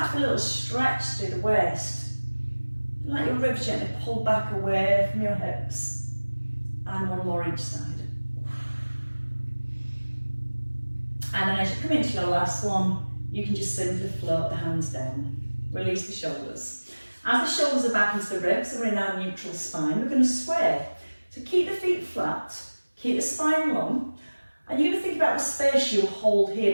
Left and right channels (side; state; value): both; inverted; correlation -1.00